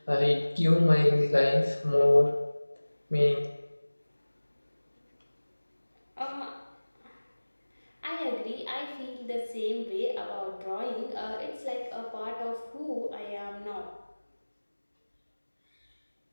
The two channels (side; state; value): both; inverted; correlation -1.00